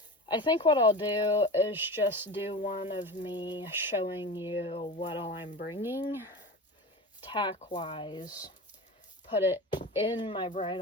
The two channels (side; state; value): both; normal; correlation 0.29